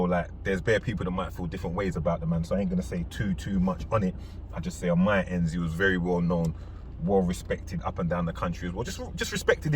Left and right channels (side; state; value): both; identical; correlation 1.00